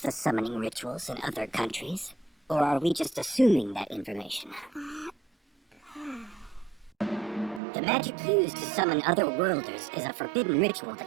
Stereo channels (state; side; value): drops out; left; at 7.6 s